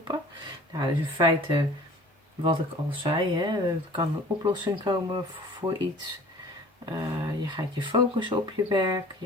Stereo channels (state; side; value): normal; both; correlation 0.47